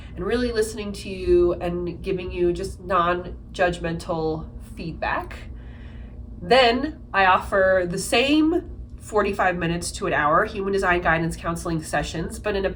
And really listening to you and giving you just non-judgmental feedback. Then I offer the same 45 minutes to an hour Human Design Guidance Counseling sessions, but in a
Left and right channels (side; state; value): both; identical; correlation 1.00